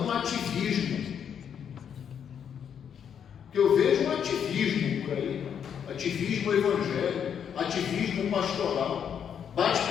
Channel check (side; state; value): right; quieter; 8.1 dB